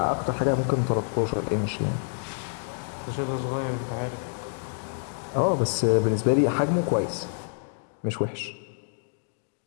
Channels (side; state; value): right; silent; digital silence